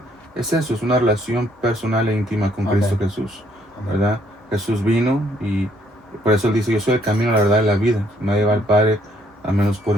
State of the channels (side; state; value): both; normal; correlation 0.67